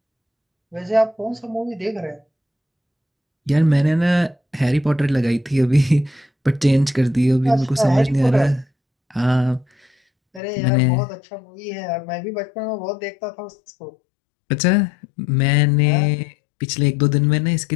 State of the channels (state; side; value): drops out; right; at 10.4 s